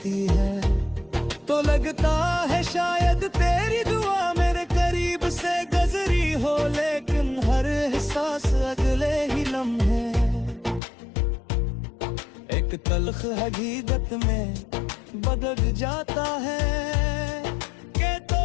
है, तो लगता है शायद तेरी दुआ मेरे करीब से गुजरी हो, लेकिन हर एहसास अगले ही लम्हे एक तल्ख हकीकत में बदल जाता है, कि तो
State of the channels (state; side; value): drops out; right; at 10.8 s